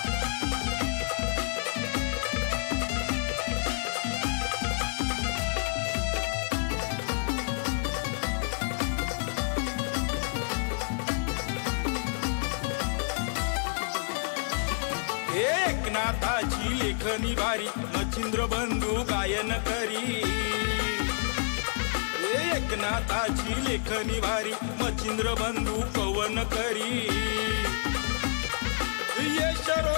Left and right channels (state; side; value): silent; right; 59 dB below the other